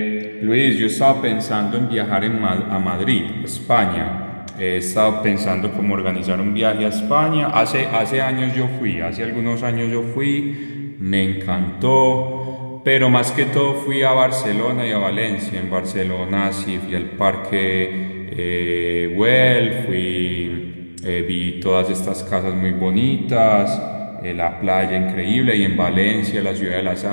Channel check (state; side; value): inverted; both; correlation -1.00